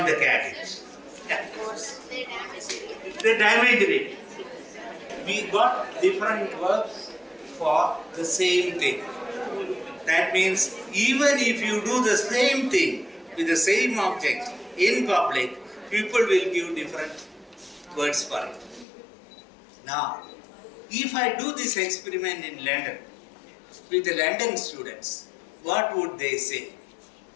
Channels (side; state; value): right; drops out; at 18.9 s